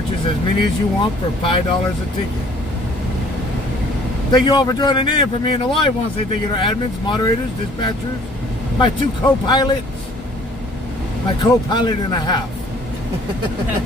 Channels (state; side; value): normal; both; correlation 0.55